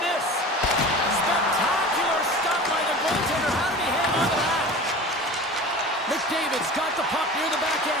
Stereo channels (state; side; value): normal; both; correlation 0.37